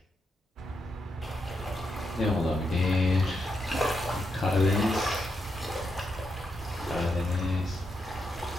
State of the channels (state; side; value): normal; both; correlation 0.82